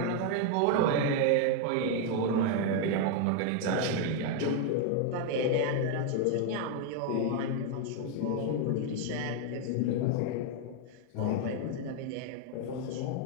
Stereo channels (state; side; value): different; both; correlation 0.01